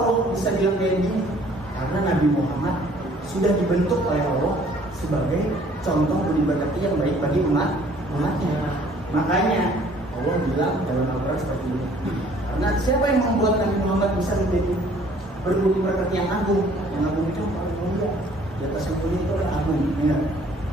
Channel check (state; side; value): normal; both; correlation 0.57